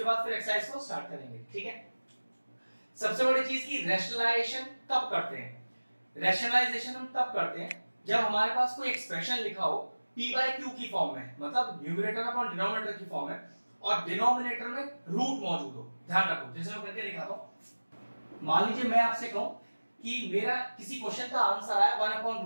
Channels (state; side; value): inverted; both; correlation -1.00